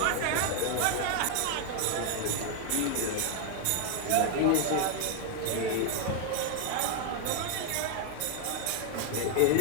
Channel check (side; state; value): both; different; correlation 0.00